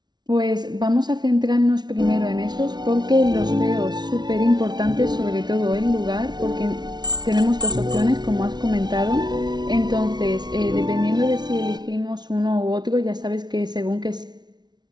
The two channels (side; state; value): left; late; 0.20 ms